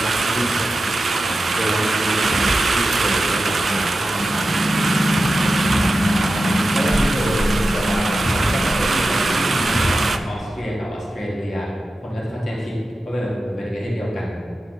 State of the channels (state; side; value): normal; both; correlation 0.93